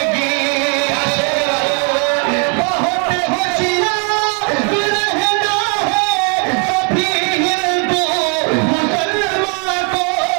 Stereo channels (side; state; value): left; quieter; 38.6 dB